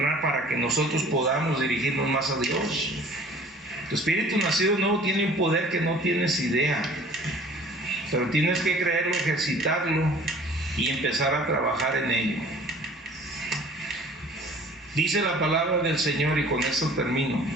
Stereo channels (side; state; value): both; normal; correlation 0.49